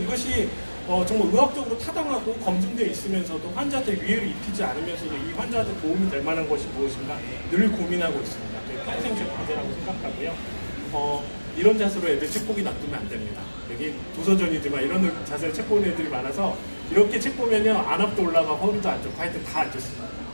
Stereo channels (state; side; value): inverted; both; correlation -1.00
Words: 정말 의학적으로 타당하고 검증되어 있으면서도 환자한테 위해를 입히지 않으면서도 이 환자한테 도움이 될 만한 것이 무엇인가 늘 고민하고 있습니다. 평생 제 과제라고 생각하고요. 이런 자세로 애들 책 보기 놔두면 안 됩니다. 여기 도서전이지만 이런 자세로 책 보는 애들이 많아서 이렇게 책 보면요 안압도 올라가고 허리도 안 좋고 하여튼 다 안 좋습니다.